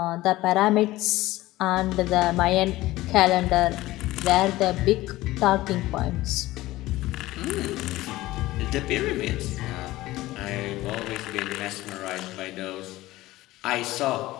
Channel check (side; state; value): right; quieter; 17.4 dB